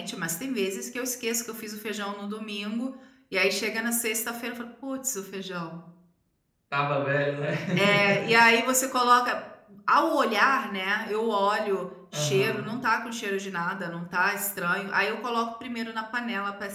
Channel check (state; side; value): identical; both; correlation 1.00